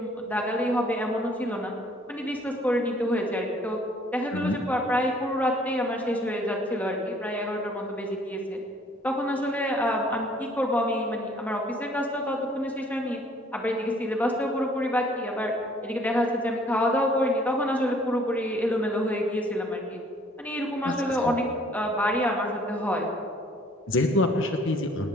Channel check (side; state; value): both; normal; correlation 0.59